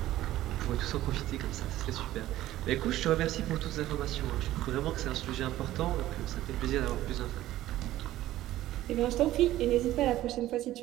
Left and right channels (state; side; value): quieter; left; 14.7 dB